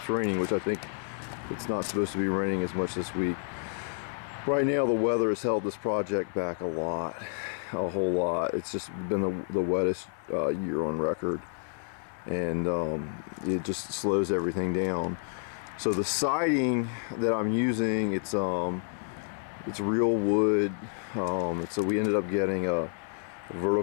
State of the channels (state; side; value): silent; right; 58 dB below the other